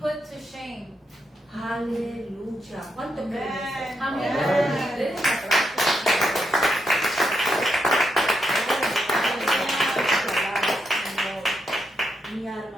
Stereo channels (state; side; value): normal; both; correlation 0.81